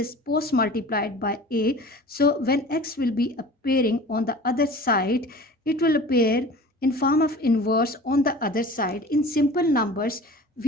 post-multiplied by a. So when x will be appearing on the other side, it will appear in form of inverse on the other side. In simple numbers,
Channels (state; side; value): normal; both; correlation 0.41